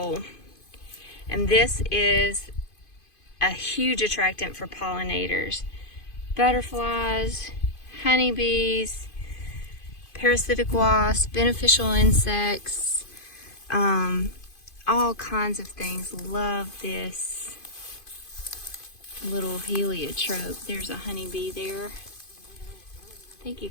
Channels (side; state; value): right; late; 2.5 ms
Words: And this is a huge attractant for pollinators, butterflies, honeybees, parasitic wasps, beneficial insects, all kinds of things. Love this little heliotrope. There's a honeybee there. I think you